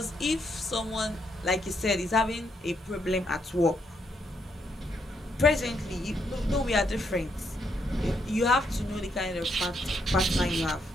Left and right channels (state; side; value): normal; both; correlation 0.76